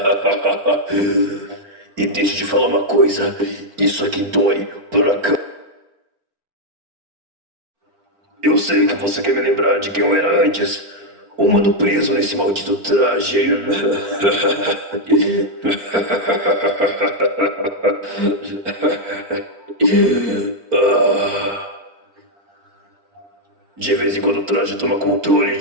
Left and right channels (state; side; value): late; left; 4.4 ms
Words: E deixa eu te falar uma coisa. Isso aqui dói pra cá. Eu sei que você quer me lembrar de quem eu era antes. Um mano preso nesse maldito traje. De vez em quando o traje toma controle